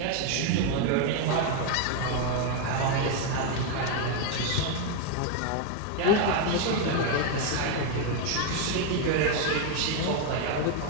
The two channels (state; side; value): different; both; correlation 0.01